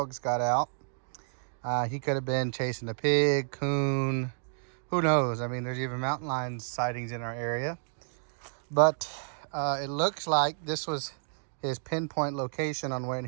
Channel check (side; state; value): left; silent; digital silence